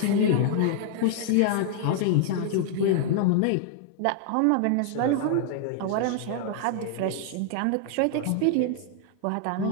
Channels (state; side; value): different; both; correlation -0.01